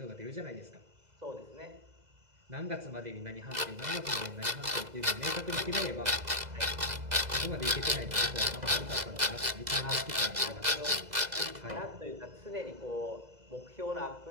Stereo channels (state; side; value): late; left; 2.0 ms